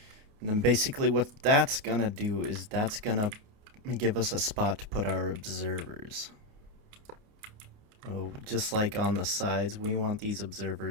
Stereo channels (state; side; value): late; left; 29 ms